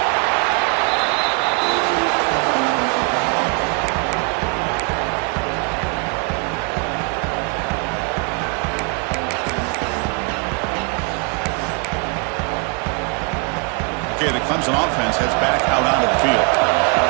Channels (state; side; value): quieter; left; 34.4 dB